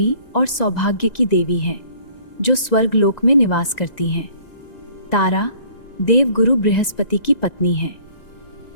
और सौभाग्य की देवी है जो स्वर्गलोक में निवास करती हैं। तारा देवगुरु बृहस्पति की पत्नी है।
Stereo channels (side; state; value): right; late; 1.9 ms